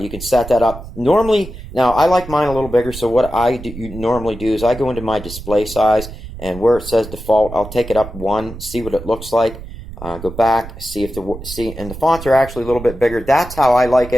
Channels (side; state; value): right; noise; rumble, 13 dB below the sound